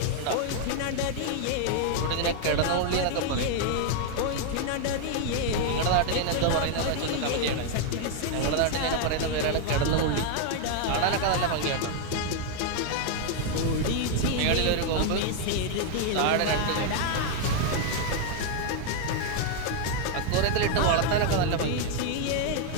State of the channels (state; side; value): different; both; correlation 0.00